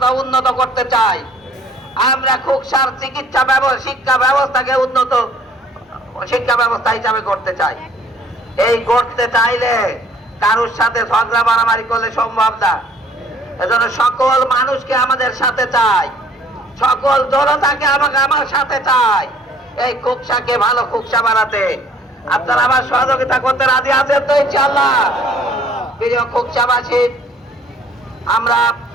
উন্নত করতে চাই। আমরা কুকসার চিকিৎসা শিক্ষা ব্যবস্থাকে উন্নত শিক্ষা ব্যবস্থা হিসাবে করতে চাই। এই করতে চাইলে কারোর সাথে ঝগড়া মারামারি করলে সম্ভব না। এজন্য সকল মানুষকে আমাদের সাথে চাই, সকল জনতাকে আমার সাথে চাই এই কুকসাকে ভালো কুকসা বানাতে। আপনারা আমার সহযোগিতা করতে রাজি আছেন তো ইনশাআল্লাহ? প্রিয় কুকসাবাসী, আমরা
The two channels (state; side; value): normal; both; correlation 0.57